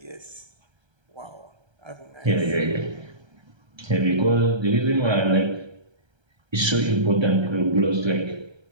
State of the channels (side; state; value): left; late; 1.3 ms